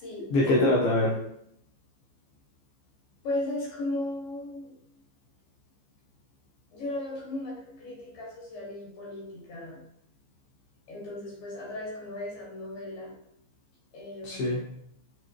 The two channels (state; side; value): late; right; 15 ms